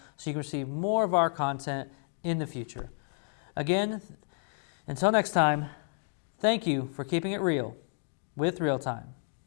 so you can receive more of our content in the future. Again, until next time, thank you for keeping it real with ReelTime.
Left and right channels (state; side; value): silent; right; digital silence